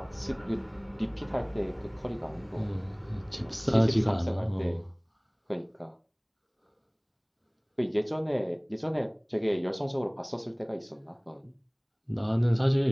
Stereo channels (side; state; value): both; identical; correlation 1.00